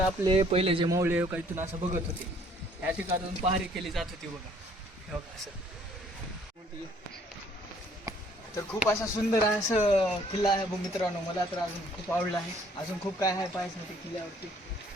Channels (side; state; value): both; normal; correlation 0.60